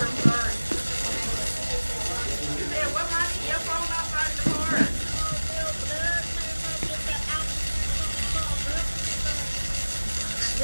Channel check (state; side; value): inverted; both; correlation -1.00